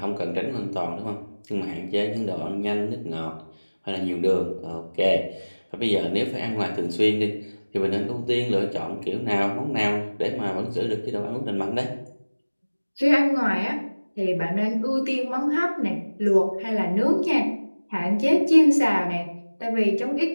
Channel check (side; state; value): both; inverted; correlation -1.00